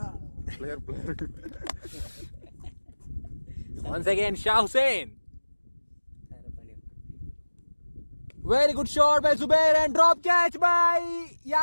player. Once again Shah Hussain. Very good shot by Zubair and drop catch by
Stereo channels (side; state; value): both; inverted; correlation -1.00